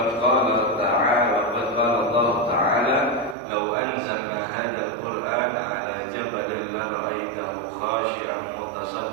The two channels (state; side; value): drops out; left; at 3.4 s